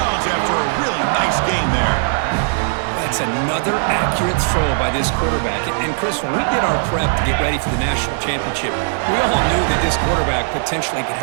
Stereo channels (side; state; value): left; silent; 62 dB below the other